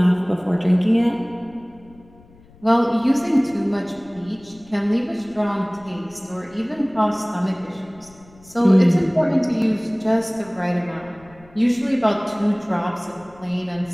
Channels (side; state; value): left; noise; rumble, 26 dB below the sound